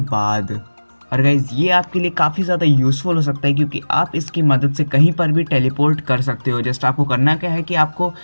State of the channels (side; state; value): both; inverted; correlation -1.00